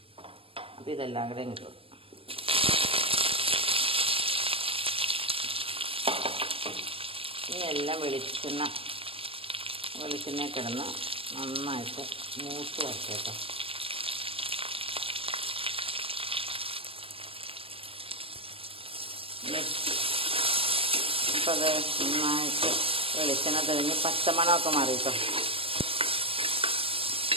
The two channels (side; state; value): left; late; 0.27 ms